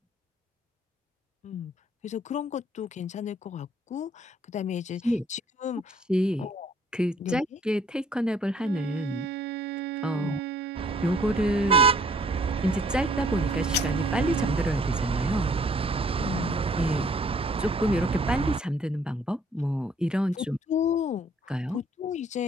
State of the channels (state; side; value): normal; both; correlation 0.61